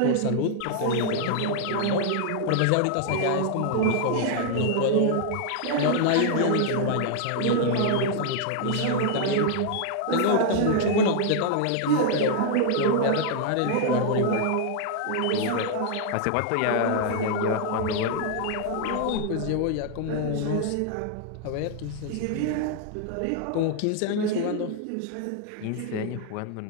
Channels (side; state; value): both; different; correlation 0.00